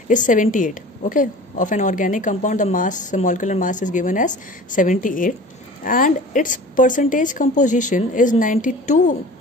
is 78. Okay, of an organic compound, the molecular mass is given as 78, and its percentage composition is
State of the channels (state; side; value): normal; both; correlation 0.41